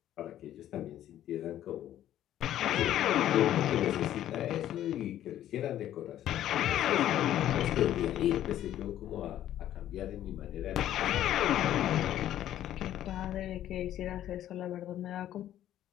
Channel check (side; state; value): right; quieter; 12.1 dB